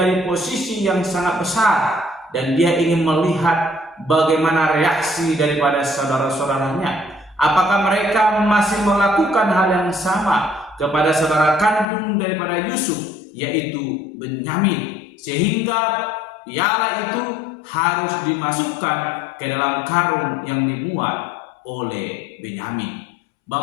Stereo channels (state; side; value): drops out; right; at 11.9 s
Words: posisi yang sangat besar dan dia ingin melihat bagaimana reaksi daripada saudara-saudaranya. Apakah mereka masih melakukan hal yang sama kepada saudara kandung daripada Yusuf, yaitu Benyamin, sehingga piala itu harus dimasukkan ke dalam karung yang dimuat oleh Benyamin.